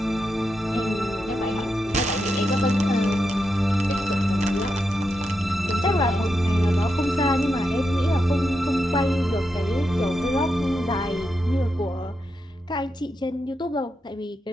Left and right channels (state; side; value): normal; both; correlation 0.86